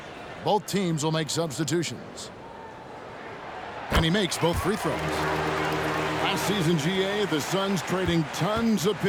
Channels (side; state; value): both; identical; correlation 1.00